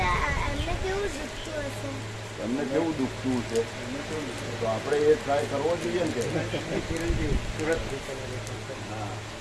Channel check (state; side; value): identical; both; correlation 1.00